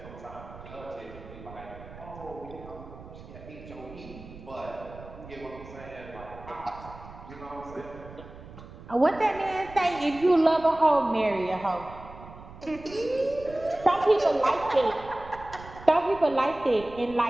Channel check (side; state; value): right; noise; rumble, 16 dB below the sound